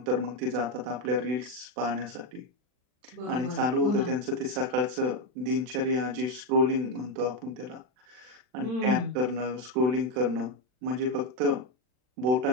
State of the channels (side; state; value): left; late; 40 ms